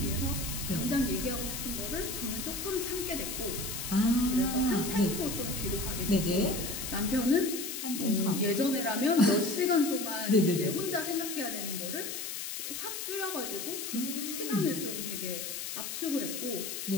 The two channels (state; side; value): noise; left; hiss, 5 dB below the sound